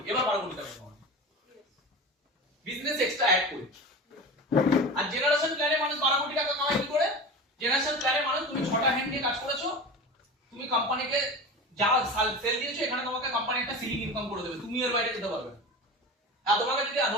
এবার 12 কোটি টাকা কামাবে। বিজনেস এক্সট্রা অ্যাড করে। আর জেনারেশন প্ল্যানে মানুষ 12 কোটি টাকা কামায় কি করে? জেনারেশন প্ল্যানে মানুষ তুমি 6টা হ্যান্ড নিয়ে কাজ করেছো, তুমি কোম্পানিকে যা সেল দিয়েছো, এখানে তোমাকে কোম্পানি একটা সিলিং ইনকাম করে দেবে, তুমি এর বাইরে যেতে পারবে না। আর তোমাকে যদি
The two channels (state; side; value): normal; both; correlation 0.30